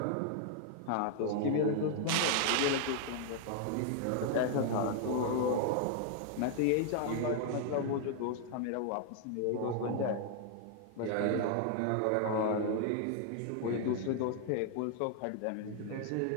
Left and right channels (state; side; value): different; both; correlation 0.00